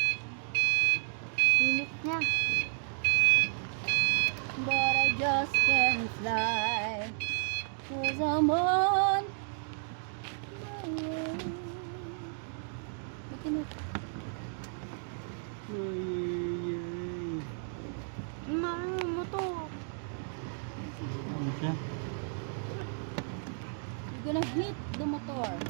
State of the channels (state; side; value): silent; left; digital silence